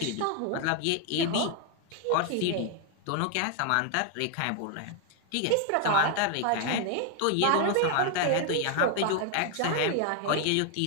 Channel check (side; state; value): both; different; correlation 0.01